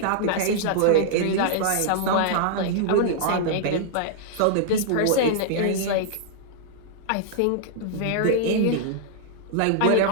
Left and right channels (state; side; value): different; both; correlation -0.01